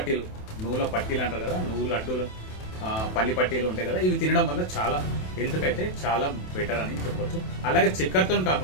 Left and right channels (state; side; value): late; right; 27 ms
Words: పట్టీలు అంటారు కదా, నువ్వు లడ్డూలు, పల్లి పట్టీలు ఉంటాయి కదా, ఇవి తినడం వల్ల చాలా హెల్త్కి అయితే చాలా బెటర్ అని చెప్పొచ్చు. అలాగే చక్కెరతో